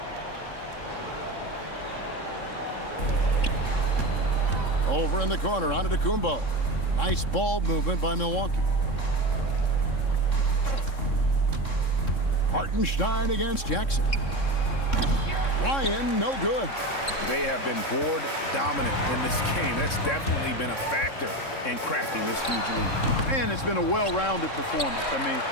Over in the corner, Antetokounmpo. Nice ball movement by Milwaukee. Hartenstein against Jackson. Ryan, no good. They have been board dominant in this game. That's definitely been a factor in crafting this huge lead. And it's been a well-rounded performance. I mean,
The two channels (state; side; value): late; right; 3.7 ms